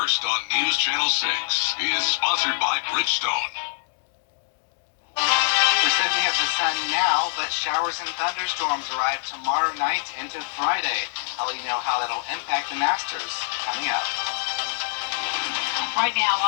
on News Channel 6 is sponsored by Bridgestone. We're said we have the sun now, but showers and thunderstorms arrive tomorrow night into Friday. I'll let you know how that'll impact the Masters coming up. Right now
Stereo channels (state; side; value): silent; right; digital silence